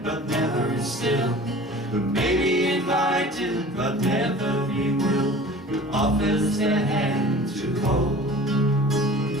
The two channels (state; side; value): normal; both; correlation 0.42